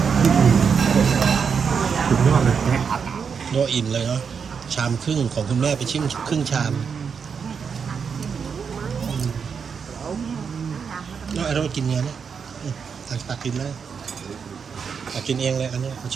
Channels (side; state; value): left; quieter; 6.3 dB